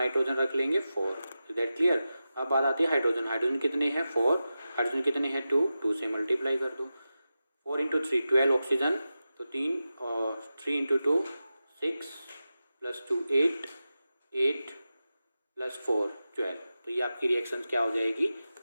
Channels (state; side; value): inverted; both; correlation -0.92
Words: रख लेंगे 4। Is that clear? अब बात आती है हाइड्रोजन। हाइड्रोजन कितने हैं? 4। हाइड्रोजन कितने हैं? 2 से मल्टीप्लाई कर दो। 4 इंटू 3 12 ऑक्सीजन, तो 3 और 3 इंटू 2 6 + 2 8 8 + 4 12। तो ये आपकी रिएक्शंस क्या हो जाएगी?